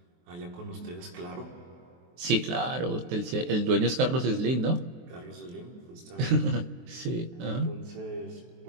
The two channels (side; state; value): left; late; 23 ms